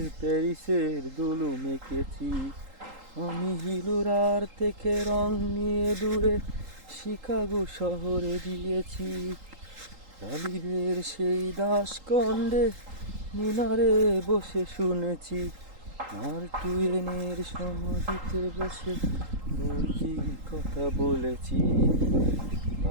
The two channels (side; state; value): left; late; 3.8 ms